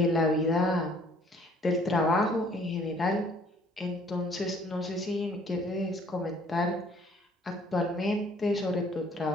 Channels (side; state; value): both; normal; correlation 0.58